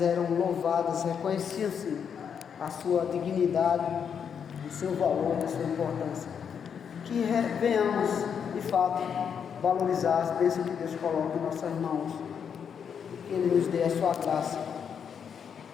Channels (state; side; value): quieter; right; 7.4 dB